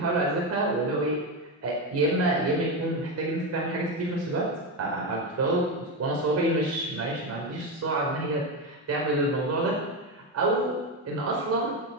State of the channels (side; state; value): both; normal; correlation 0.13